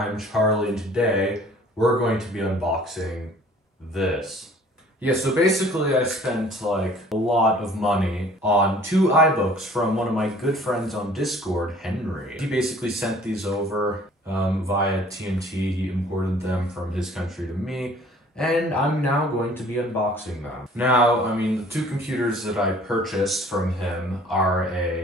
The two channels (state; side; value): normal; both; correlation 0.53